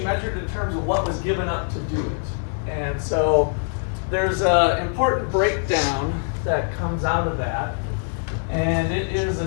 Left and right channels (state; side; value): silent; right; 61 dB below the other